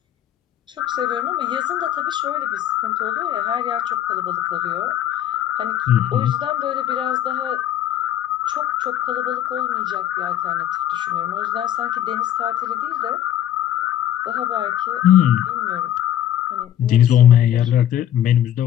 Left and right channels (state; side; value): quieter; right; 11.5 dB